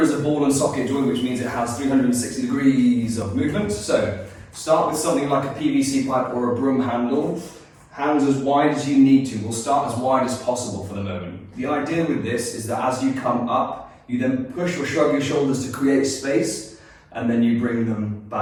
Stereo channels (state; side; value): identical; both; correlation 1.00